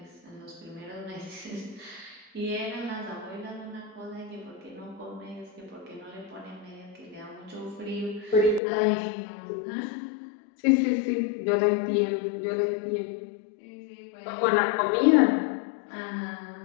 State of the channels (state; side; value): drops out; right; at 8.6 s